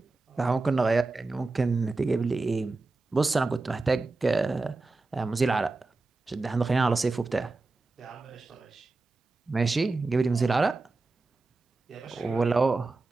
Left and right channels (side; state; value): left; quieter; 3.5 dB